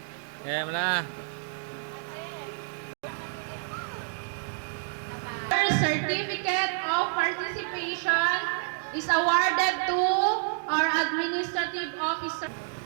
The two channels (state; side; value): silent; left; digital silence